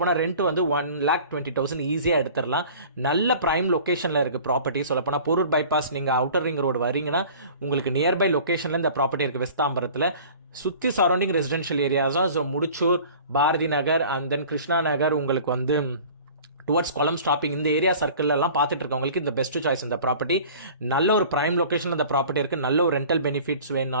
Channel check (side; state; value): both; inverted; correlation -0.45